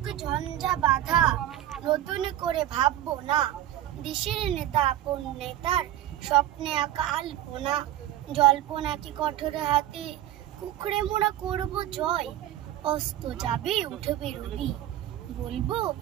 ঝঞ্ঝা বাধা, নতুন করে ভাববো না। দেশের নেতা আপন নেতার স্বপ্নে আঁকা আলপনা। জল্পনা কি কঠোর হাতে কুকড়ে মোড়া করব জয়। অস্ত যাবে উঠবে রবি, বলবো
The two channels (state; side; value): quieter; left; 13.0 dB